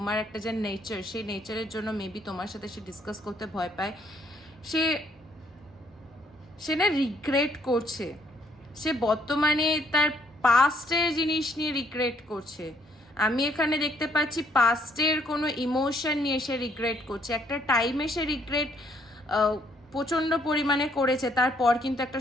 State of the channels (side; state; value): both; normal; correlation 0.67